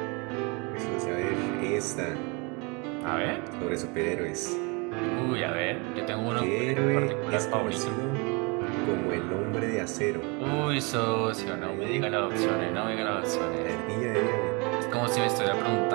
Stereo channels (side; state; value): left; quieter; 30.1 dB